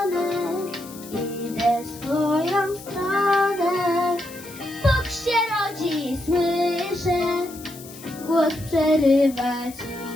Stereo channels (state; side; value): noise; left; hiss, 17 dB below the sound